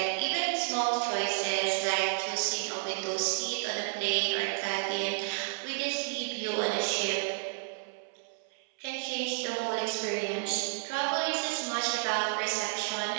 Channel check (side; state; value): left; silent; 57 dB below the other